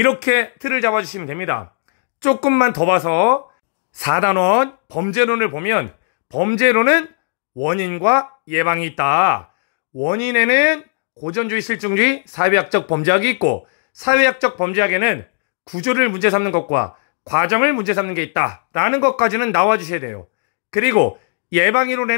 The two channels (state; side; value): silent; right; digital silence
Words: 틀을 잡아주시면 됩니다. 조금만 더 봐서 4단원 범죄론을 보면, 범죄론은 원인과 예방이 있다. 원인에는 고전주의, 실증주의, 사회학적 범죄학이 있고, 사회학적 범죄학에는 구조를 문제 삼는 것과 과정을 문제 삼는 게 있다 라는 것까지는 나와주셔야 돼요. 그리고